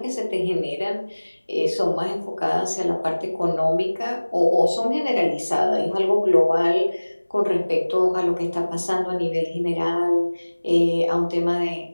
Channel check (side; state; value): both; inverted; correlation -1.00